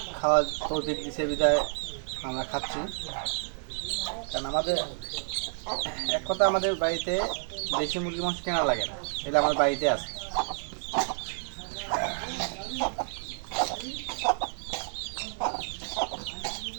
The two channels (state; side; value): silent; left; digital silence